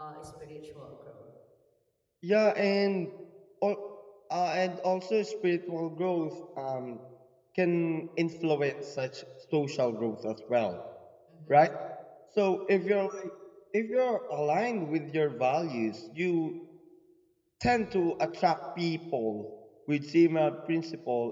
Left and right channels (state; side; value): identical; both; correlation 1.00